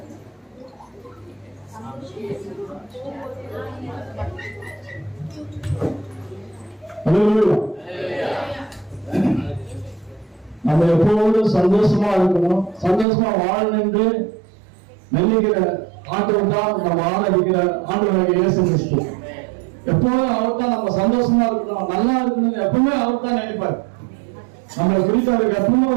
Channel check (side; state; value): left; drops out; at 13.1 s